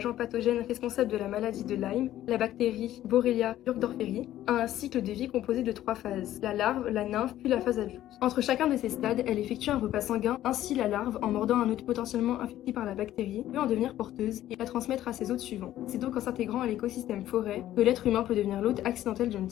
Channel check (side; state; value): right; quieter; 13.2 dB